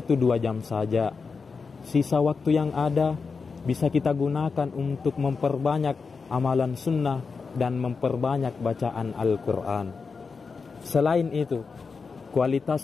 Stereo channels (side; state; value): right; quieter; 4.9 dB